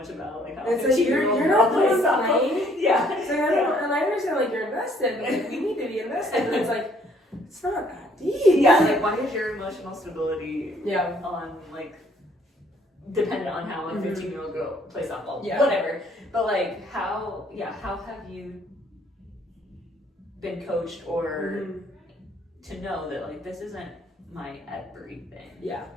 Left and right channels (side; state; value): both; normal; correlation 0.63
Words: about like how it's like you're not playing. So and I understand like you're invested, but like, we need to be invested, and it's like it's not that deep. Like why is your emotional stability on like dependent on how a 15-year-old girl plays softball? Whatever. But like how have you been coached or to know that like this isn't my everything?